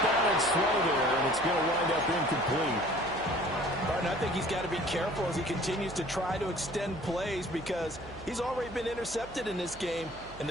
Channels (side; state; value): right; noise; hum, 18 dB below the sound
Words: balance throw there, and it's going to wind up incomplete. Barton, I think he's got to be careful as he continues to try to extend plays because he's already been intercepted in this game. And